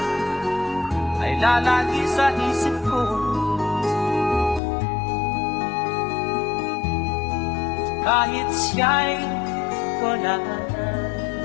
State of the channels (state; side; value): drops out; right; at 4.6 s